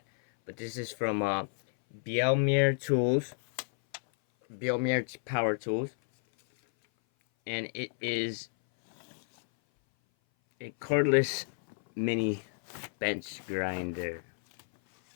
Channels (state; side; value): silent; right; 57 dB below the other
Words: But this is from Bielmeier Tools. Bielmeier Power Tools. And it is a cordless mini bench grinder.